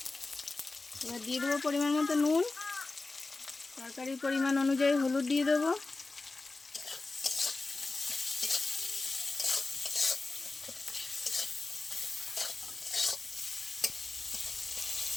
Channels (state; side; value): quieter; right; 3.5 dB